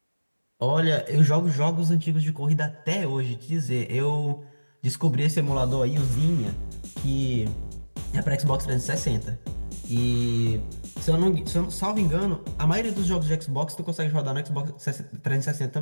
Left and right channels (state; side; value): inverted; both; correlation -1.00